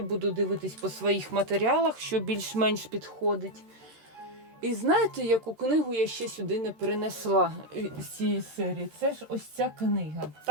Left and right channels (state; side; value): late; left; 13 ms